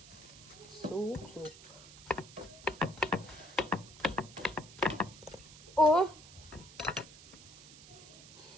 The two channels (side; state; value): right; noise; hiss, 18 dB below the sound